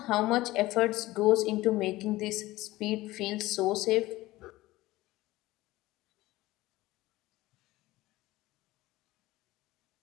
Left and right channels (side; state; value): right; quieter; 18.1 dB